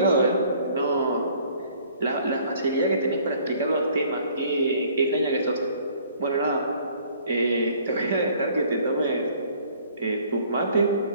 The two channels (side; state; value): both; inverted; correlation -0.57